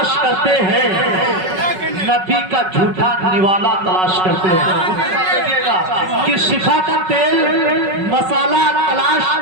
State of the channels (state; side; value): late; left; 5.4 ms